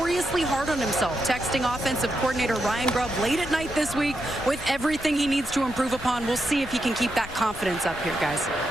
hard on himself, texting offensive coordinator Ryan Grubb late at night this week with everything he needs to improve upon. We'll see if he can keep that confidence up here, guys.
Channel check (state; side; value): noise; left; rumble, 14 dB below the sound